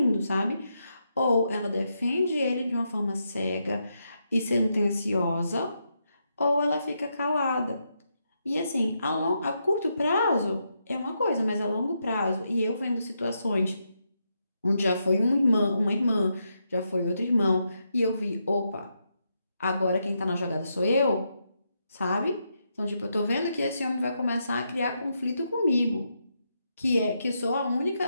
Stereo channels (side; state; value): both; inverted; correlation -0.82